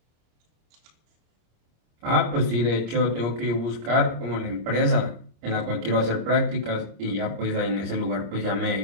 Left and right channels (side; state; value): left; late; 25 ms